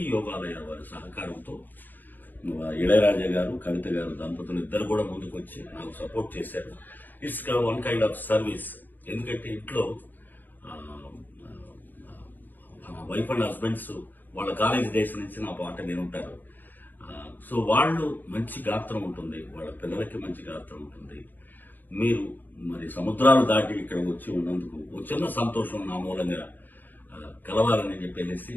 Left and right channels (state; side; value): late; right; 0.088 ms